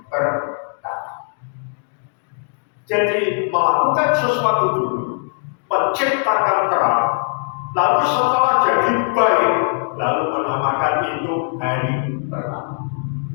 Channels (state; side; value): silent; right; digital silence